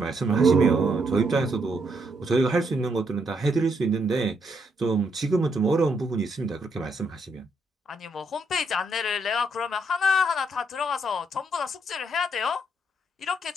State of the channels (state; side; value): normal; both; correlation 0.75